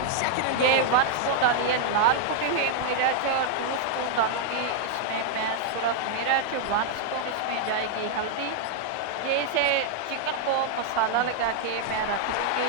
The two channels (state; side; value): different; both; correlation -0.01